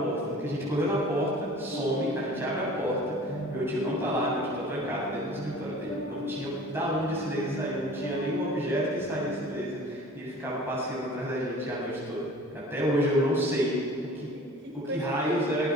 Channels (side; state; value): both; normal; correlation 0.45